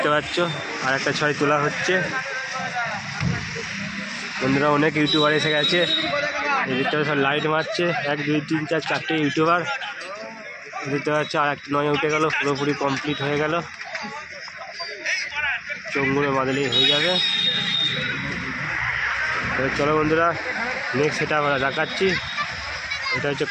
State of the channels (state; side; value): identical; both; correlation 1.00